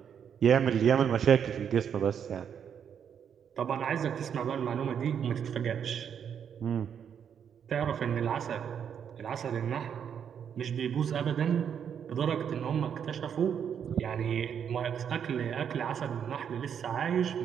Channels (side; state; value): left; quieter; 8.0 dB